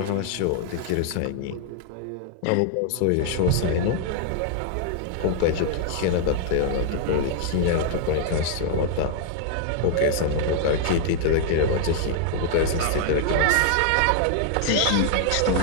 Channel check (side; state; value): both; different; correlation 0.00